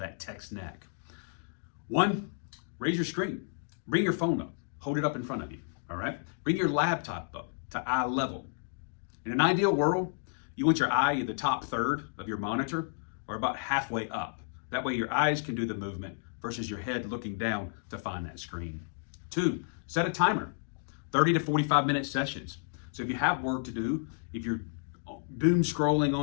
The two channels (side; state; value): right; silent; digital silence